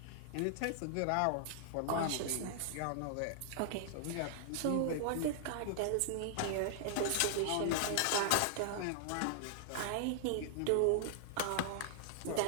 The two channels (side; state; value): both; different; correlation -0.01